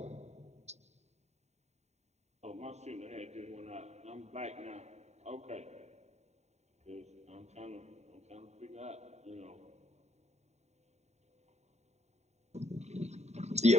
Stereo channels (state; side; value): late; left; 0.32 ms